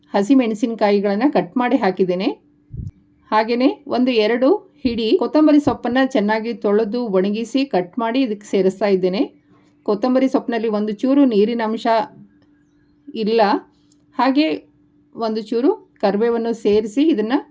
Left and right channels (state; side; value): identical; both; correlation 1.00